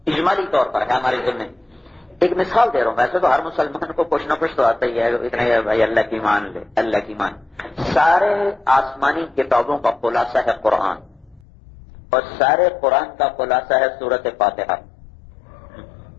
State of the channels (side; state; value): right; drops out; at 11.4 s